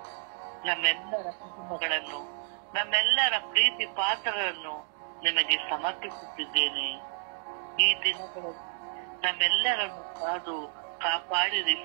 ನಮ್ಮೆಲ್ಲರ ಕುಟುಂಬಗಳನ್ನು, ನಮ್ಮೆಲ್ಲರ ಪ್ರೀತಿ ಪಾತ್ರರನ್ನು ನಿಮಗೆ ಸಮರ್ಪಿಸುತ್ತಿದ್ದೇನೆ. ಈ ದಿನಗಳಲ್ಲಿ ನಮ್ಮೆಲ್ಲರನ್ನು ಕಾದು ಕಾಪಾಡಿರಿ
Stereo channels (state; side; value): silent; left; 58 dB below the other